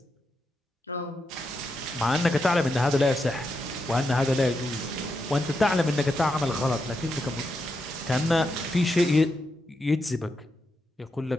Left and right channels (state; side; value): normal; both; correlation 0.84